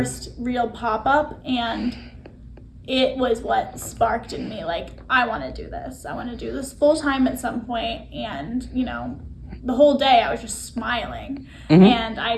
real pop-up, and it was what sparked in me, like, I want to do this. I want to do this full time at some point. And, the whole day I was just smiling. Mm-hmm. And I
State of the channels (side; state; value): both; identical; correlation 1.00